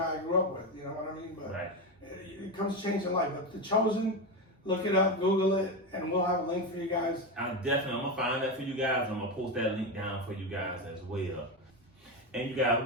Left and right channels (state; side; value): normal; both; correlation 0.15